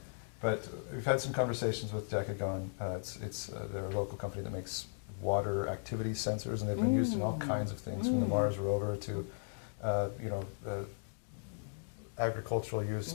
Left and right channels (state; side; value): silent; right; digital silence